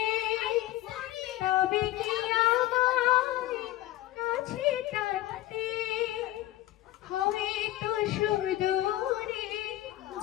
তবে কি আমার কাছে টানতে। হয়তো সুদূরে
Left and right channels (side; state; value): right; quieter; 15.4 dB